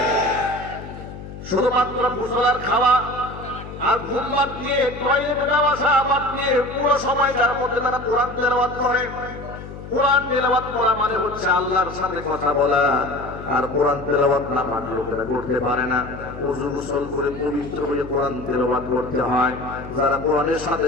শুধুমাত্র গোসল খাওয়া আর ঘুম বাদ দিয়ে, টয়লেটে যাওয়া বাদ দিয়ে পুরো সময়টার মধ্যে তারা কোরআন তেলাওয়াত করে। কোরআন তেলাওয়াত করা মানে হচ্ছে আল্লাহর সাথে কথা বলা। আর কোরআন তেলাওয়াত না পারলে লোকেরা করতে পারে না। ওযু গোসল করে পবিত্র হয়ে কোরআন তেলাওয়াত করতে হয়। যারা কোরআনের সাথে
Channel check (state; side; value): noise; left; hum, 12 dB below the sound